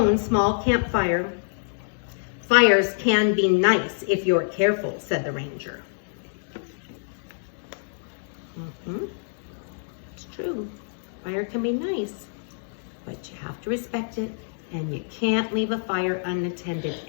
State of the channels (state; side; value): silent; right; digital silence